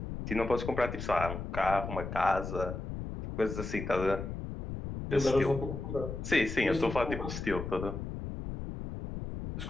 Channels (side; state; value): left; noise; rumble, 6 dB below the sound